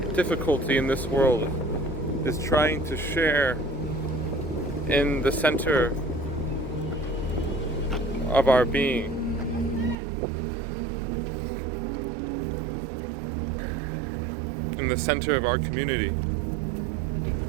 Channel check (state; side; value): drops out; left; at 10.0 s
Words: difficulty in this world is trying to share in the center of our being. In the center of our community.